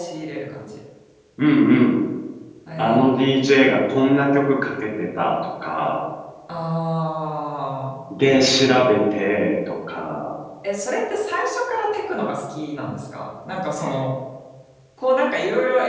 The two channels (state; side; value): identical; both; correlation 1.00